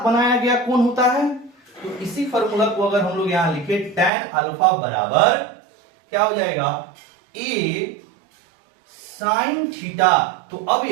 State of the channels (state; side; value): drops out; left; at 4.1 s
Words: बनाया गया कोण होता है। तो इसी फॉर्मूला को अगर हम लोग यहां लिखे, tan अल्फा बराबर क्या हो जाएगा, a साइन थीटा। तो अब